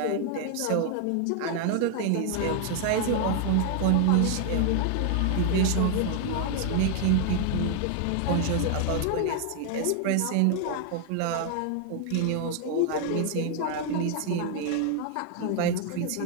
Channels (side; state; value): both; different; correlation 0.00